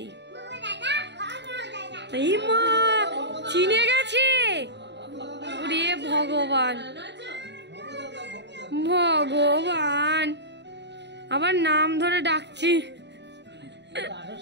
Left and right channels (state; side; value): late; left; 0.51 ms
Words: ইমা চিনে গেছে, ওরে ভগবান ভগবান, আবার নাম ধরে ডাকছি।